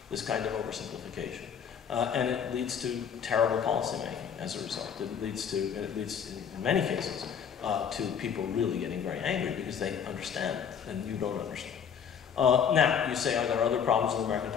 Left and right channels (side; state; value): right; quieter; 7.6 dB